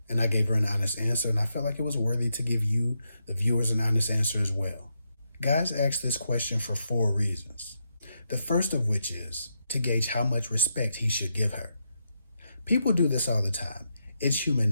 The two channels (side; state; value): both; inverted; correlation -0.82